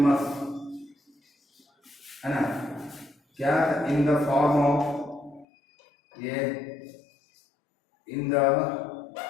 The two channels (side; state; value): right; drops out; at 5.5 s